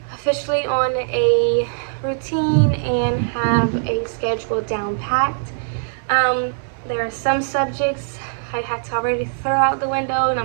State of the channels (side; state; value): left; silent; digital silence